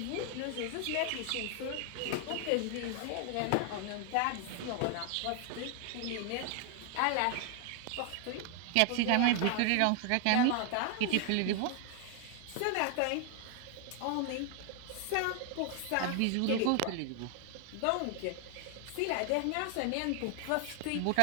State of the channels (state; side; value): different; both; correlation 0.00